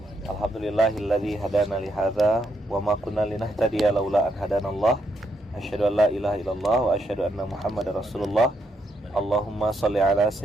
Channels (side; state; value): both; normal; correlation 0.77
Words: Alhamdulillahilladzi hadana li hadza wa ma kunna linahtadiya laula an hadanallah. Asyhadu an la ilaha illallah wa asyhadu anna Muhammadar Rasulullah. Allahumma shalli ala